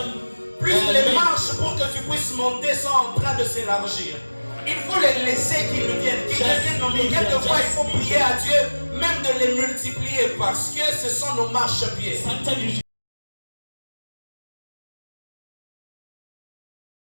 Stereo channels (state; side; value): inverted; both; correlation -1.00